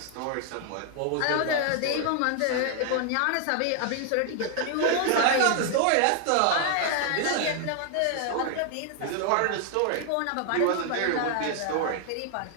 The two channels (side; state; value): both; different; correlation 0.00